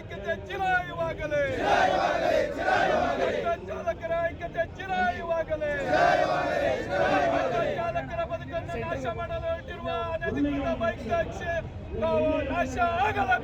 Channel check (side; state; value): both; identical; correlation 1.00